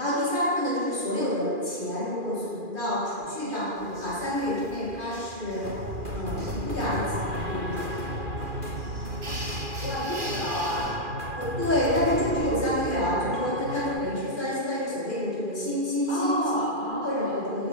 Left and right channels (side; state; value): left; late; 2.4 ms